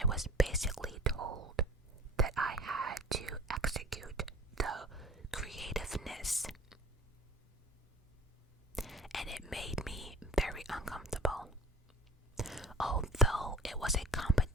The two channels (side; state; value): both; normal; correlation 0.43